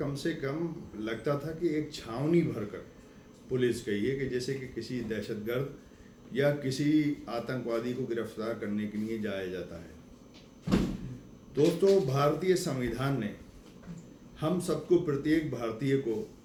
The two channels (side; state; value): both; identical; correlation 1.00